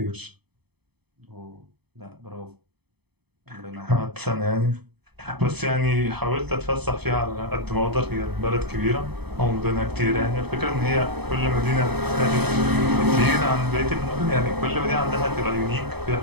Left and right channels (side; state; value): left; late; 0.98 ms